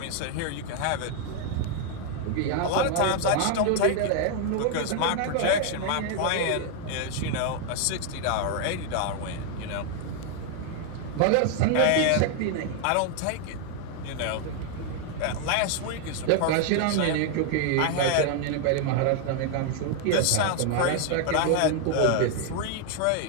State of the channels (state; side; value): different; both; correlation 0.00